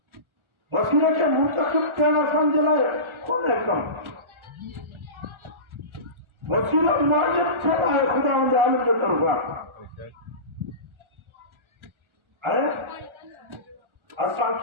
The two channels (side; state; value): left; late; 1.4 ms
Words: وسیلے کے منتخب کہنا سمجھ لائے کون ہے کم. وسیلہ واجب چھنا ہے خدا عالم کے طرفا بے شک. ہے. اساں